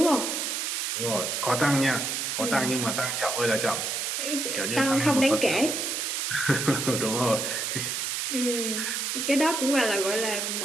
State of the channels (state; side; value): noise; right; hiss, 1 dB below the sound